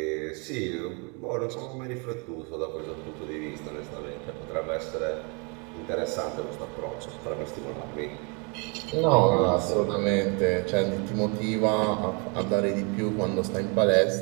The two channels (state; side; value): quieter; left; 33.6 dB